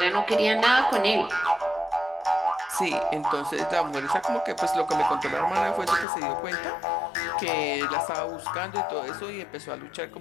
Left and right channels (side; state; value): right; drops out; at 6.1 s